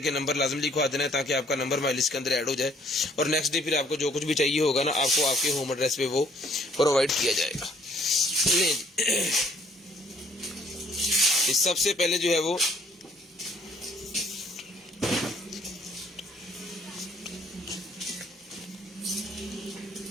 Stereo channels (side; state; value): both; normal; correlation 0.61